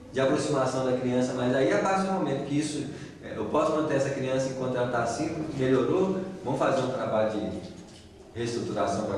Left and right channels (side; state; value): both; identical; correlation 1.00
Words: de aproximação da criança. Mas aí, a partir do momento que isso, eu posso manter essa criança enquanto ela está assim, melhorou, vamos fazer um trabalho de reestruturação